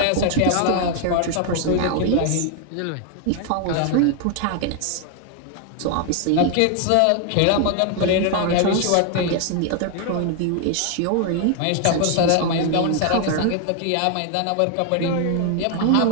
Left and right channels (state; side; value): different; both; correlation 0.00